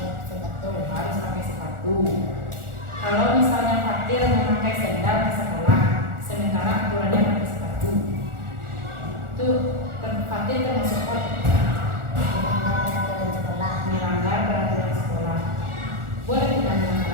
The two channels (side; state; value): left; late; 1.4 ms